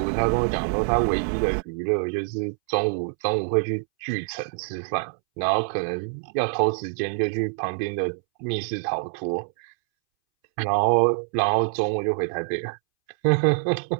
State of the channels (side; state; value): left; silent; 62 dB below the other